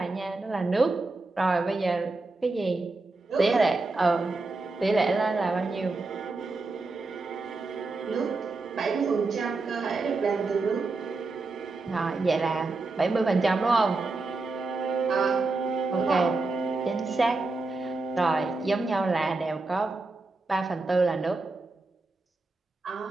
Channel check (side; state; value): left; quieter; 3.5 dB